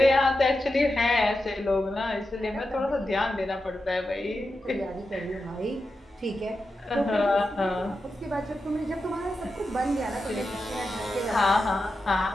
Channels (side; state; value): both; normal; correlation 0.90